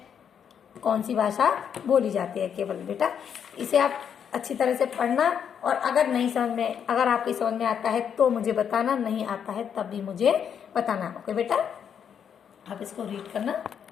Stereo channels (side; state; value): right; quieter; 8.0 dB